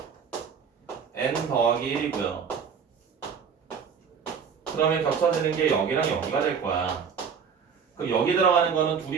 n 더하기 1이고요. 그러면 겹쳐지는 게 여기랑 여기가 될 거야. 그럼 여기 들어가는 거는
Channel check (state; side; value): quieter; left; 6.6 dB